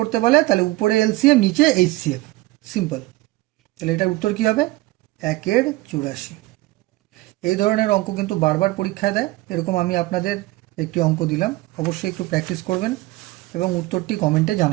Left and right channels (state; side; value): quieter; left; 19.7 dB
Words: বলে তাহলে উপরে এলসিএম নিচে এইচসিএফ। সিম্পল। তাহলে এটার উত্তর কি হবে? 1/84। এই ধরনের অঙ্ক কিন্তু বারবার পরীক্ষায় দেয়। এরকম আমি আপনাদের একটি অঙ্ক দিলাম, অবশ্যই একটু প্র্যাকটিস করবেন এবং উত্তরটি কমেন্টে